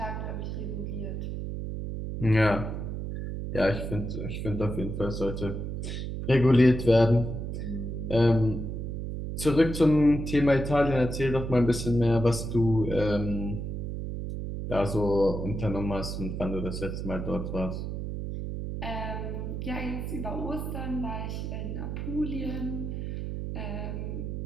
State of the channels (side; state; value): right; noise; hum, 4 dB below the sound